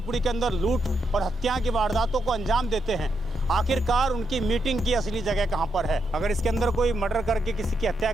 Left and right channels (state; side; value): normal; both; correlation 0.81